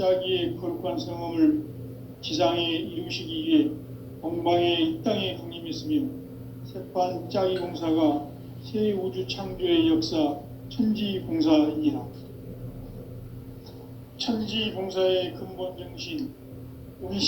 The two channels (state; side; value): identical; both; correlation 1.00